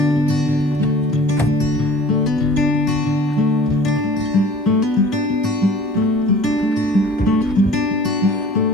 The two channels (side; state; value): both; normal; correlation 0.47